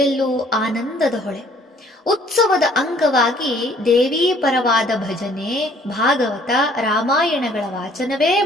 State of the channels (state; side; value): normal; both; correlation 0.59